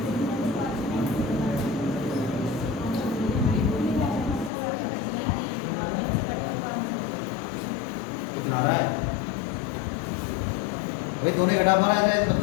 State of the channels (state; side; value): drops out; right; at 4.5 s